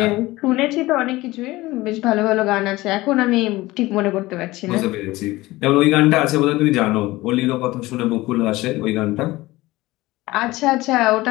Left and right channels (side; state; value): right; quieter; 19.1 dB